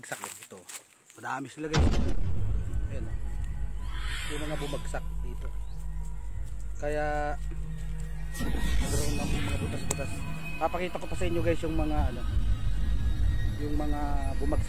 dito. Madami sila guys. Ayan. Yung mga bumagsak dito. Kaya nagkaroon ng mga butas-butas. Papakita ko pa sa inyo guys yung mga yung mga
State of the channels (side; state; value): both; identical; correlation 1.00